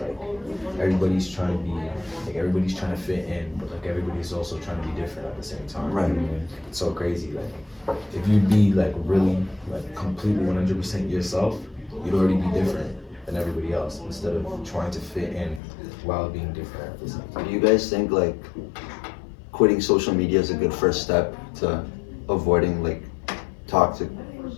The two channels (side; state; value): right; drops out; at 15.6 s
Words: Everybody's trying to be, everybody's trying to fit in, but everybody's also trying to be different at the same time. Right. It's so crazy. If you'd be really completely 100% yourself, you'd already be different than everybody else instead of trying to fit in while being different at the same time. Do you guys think quitting social media is a good first step to avoiding toxic